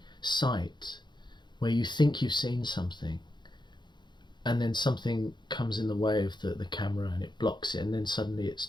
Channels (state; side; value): late; right; 0.22 ms